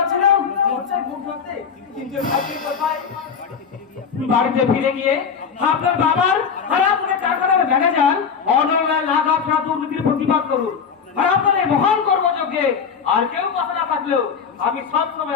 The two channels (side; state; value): right; quieter; 6.4 dB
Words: লজ্জায় মুখ ঢাকতে। কিন্তু ভাগ্যের কোথায় বাড়িতে ফিরে গিয়ে আপনার বাবার হারাপুরে টাকার ম্যানেজার অনলাইন লাখ আপনার দুর্নীতির প্রতিবাদ করুন। আর আপনাদের মহান কর্মযোগ্যে আর কেউ কথা না থাকলেও আমি সব